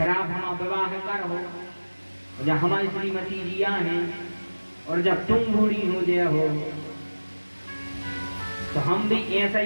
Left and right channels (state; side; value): inverted; both; correlation -1.00